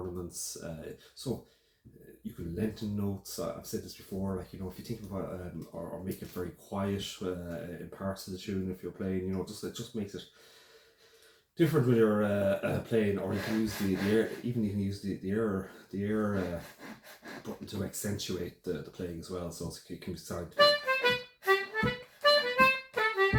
So you can lengthen notes. I've said this before. Like, you know, if you think about or make it very quiet in parts of the tune, if you're playing, you know, it just makes it different when you're playing. Or you can use the air. Even you can use the air button to accentuate the playing as well. So it can be sound.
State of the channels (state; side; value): identical; both; correlation 1.00